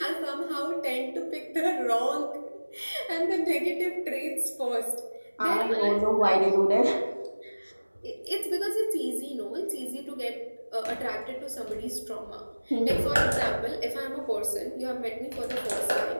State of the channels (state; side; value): inverted; both; correlation -1.00